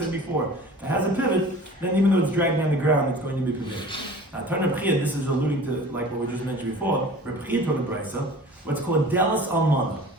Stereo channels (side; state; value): both; normal; correlation 0.43